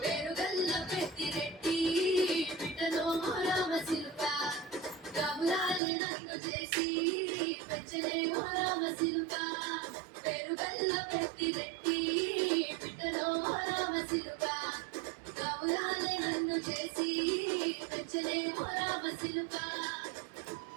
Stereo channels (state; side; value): drops out; left; at 5.8 s